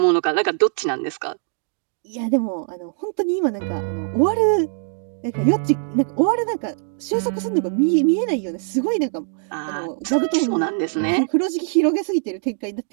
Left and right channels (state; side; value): silent; left; digital silence